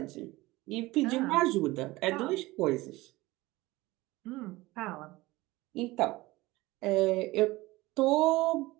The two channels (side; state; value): left; quieter; 20.0 dB